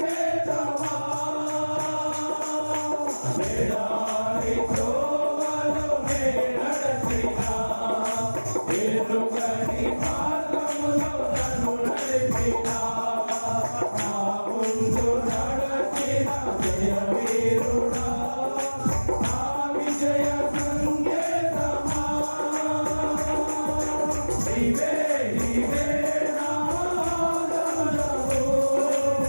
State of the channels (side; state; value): both; inverted; correlation -1.00